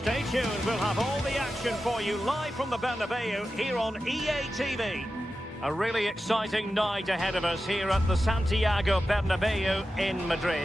tuned, we'll have all the action for you live from the Bernabeu here on EA TV. A really exciting night ahead of us here at the Santiago Bernabeu in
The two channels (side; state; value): both; normal; correlation 0.92